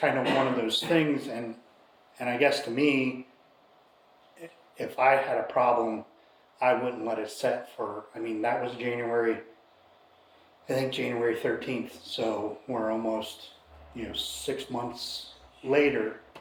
of one of those things, and I guess to me, if I had a problem, I wouldn't let it set for, I mean, that was January 13th, so we're almost, you know, 6 months later.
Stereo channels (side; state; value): both; identical; correlation 1.00